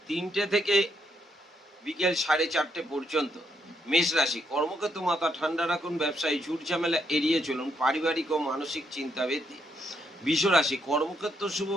3টে থেকে বিকেল 4:30 পর্যন্ত। মেষ রাশি, কর্মক্ষেত্র মাথা ঠান্ডা রাখুন, ব্যবসায়ী ঝুট ঝামেলা এড়িয়ে চলুন, পারিবারিক ও মানসিক চিন্তা বৃদ্ধি। বৃষ রাশি, কর্মক্ষেত্র শুভ,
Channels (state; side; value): normal; both; correlation 0.76